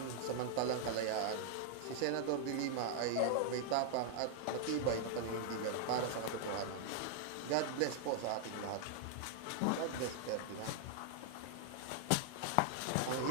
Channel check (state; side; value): different; both; correlation -0.01